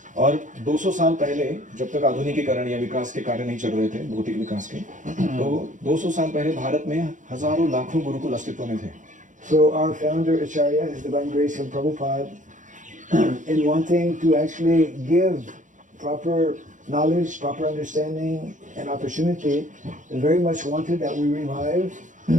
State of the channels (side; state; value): left; late; 0.37 ms